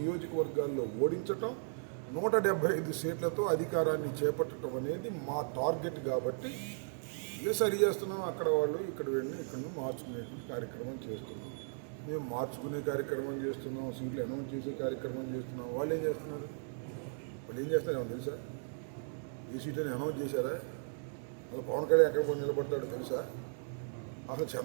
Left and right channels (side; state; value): left; silent; 54 dB below the other